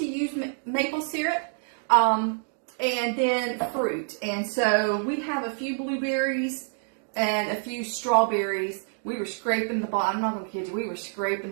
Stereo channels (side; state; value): left; silent; digital silence